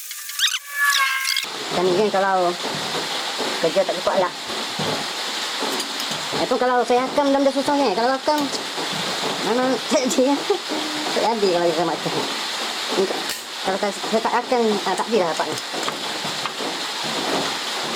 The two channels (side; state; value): both; identical; correlation 1.00